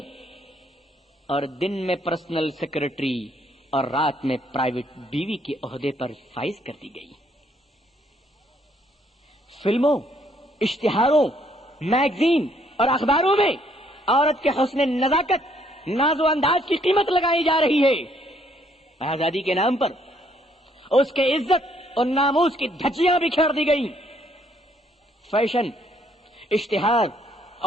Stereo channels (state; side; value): normal; both; correlation 0.68